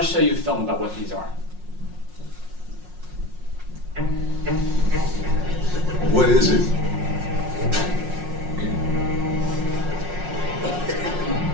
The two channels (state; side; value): late; left; 5.5 ms